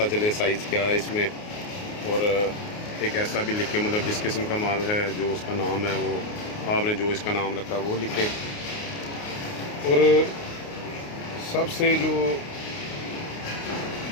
चले साइज़ क्या है इसमें, और एक ऐसा भी लिखें मतलब जिस किस्म का माल है, जो उसका नाम है, वो आपने जो इसका नाम रखा वो लिखें। और सबसे जो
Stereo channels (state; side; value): late; right; 29 ms